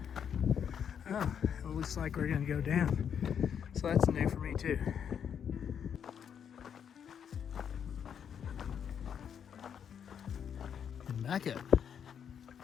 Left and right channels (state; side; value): quieter; right; 8.0 dB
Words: Oh, it looks like we're gonna go down. So that's new for me too. And back up.